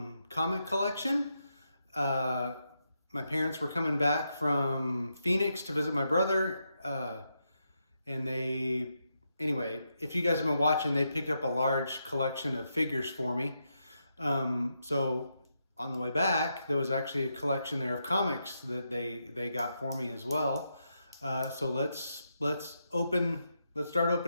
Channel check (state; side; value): inverted; both; correlation -0.83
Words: comic collection. My parents were coming back from Phoenix to visit my brother, and anyway, if you guys have been watching, they picked up a large collection of figures for me. So on the way back, there was actually a collection there of comics that they got for me as well. So let's start opening